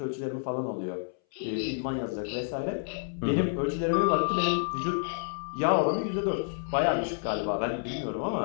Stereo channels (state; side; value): silent; right; 58 dB below the other